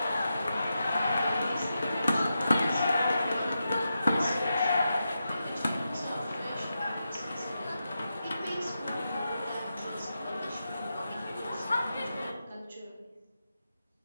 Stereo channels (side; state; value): both; inverted; correlation -0.88